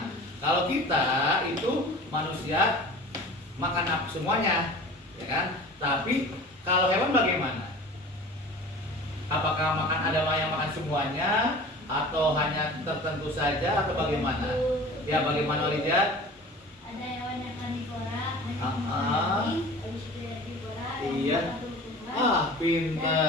kalau kita itu manusia makan apa semuanya, ya kan? Tapi kalau hewan bagaimana? Apakah ada yang makan semuanya atau hanya tertentu saja atau bagaimana? Ya, bagaimana Rijat? Ada hewan yang karnivora, Iya.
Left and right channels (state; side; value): normal; both; correlation 0.40